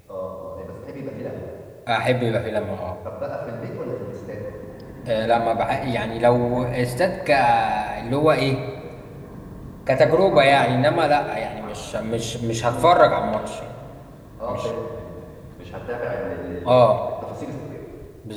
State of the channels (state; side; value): identical; both; correlation 1.00